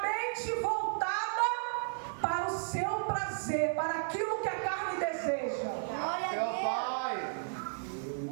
voltada para o seu prazer, para aquilo que a carne deseja. Meu Pai!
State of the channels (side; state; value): left; silent; digital silence